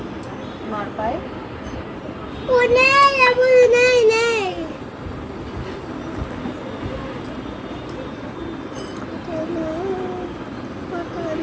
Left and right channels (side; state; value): both; identical; correlation 1.00